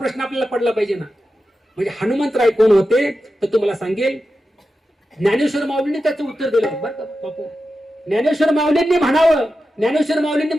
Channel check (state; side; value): normal; both; correlation 0.91